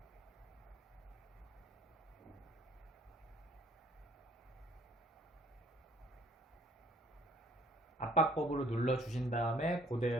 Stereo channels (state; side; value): normal; both; correlation 0.60